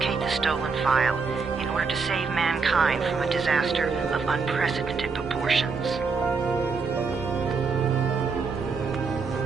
the stolen file in order to save mankind from a disaster of unprecedented proportions.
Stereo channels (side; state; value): left; quieter; 4.9 dB